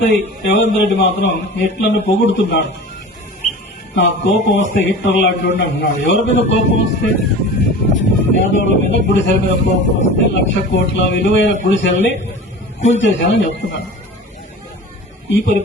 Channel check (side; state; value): both; normal; correlation 0.37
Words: రేవంత్ రెడ్డి మాత్రం హిట్లర్ను పొగుడుతున్నాడు. నాకు కోపం వస్తే హిట్లర్ లాంటి అంటున్నాడు. ఎవరి మీద కోపం వస్తే? పేదోళ్ల మీద, గుడిసెల మీద కోపం వస్తే 1,00,000 కోట్ల విలువైన గుడిసెల్ని కూల్చేశానని చెప్తున్నాడు. ఈ